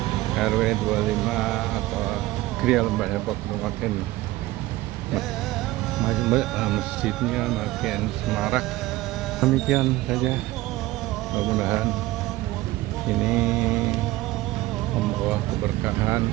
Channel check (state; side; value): quieter; left; 17.3 dB